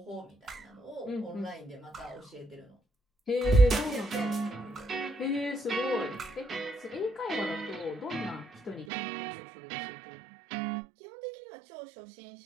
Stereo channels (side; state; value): left; drops out; at 8.8 s